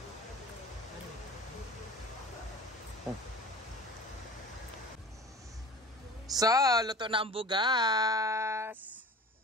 So, luto na ang bugas.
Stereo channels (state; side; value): normal; both; correlation 0.38